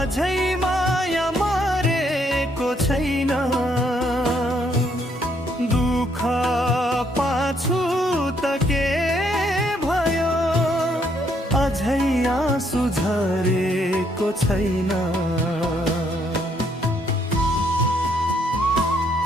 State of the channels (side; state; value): both; normal; correlation 0.71